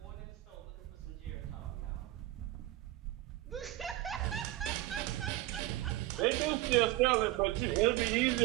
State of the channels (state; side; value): quieter; left; 16.6 dB